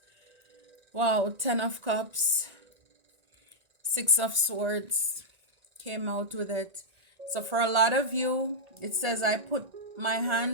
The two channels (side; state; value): left; late; 1.8 ms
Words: Wow, 10 of Cups, 6 of Swords came out with it. So for a lot of you, it says, I put my